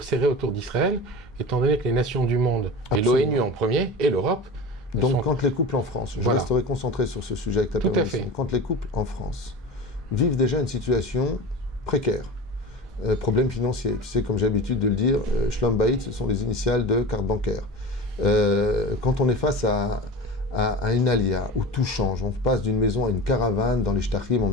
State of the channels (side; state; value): both; normal; correlation 0.32